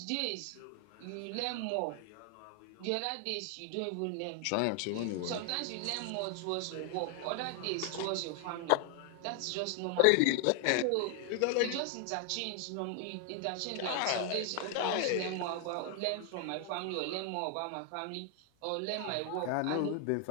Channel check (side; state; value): both; different; correlation 0.00